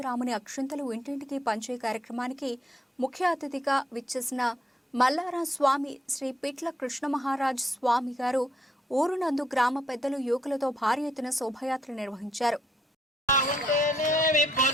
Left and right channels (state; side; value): normal; both; correlation 0.73